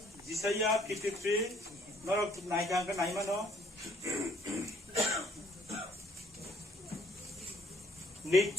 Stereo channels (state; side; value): normal; both; correlation 0.63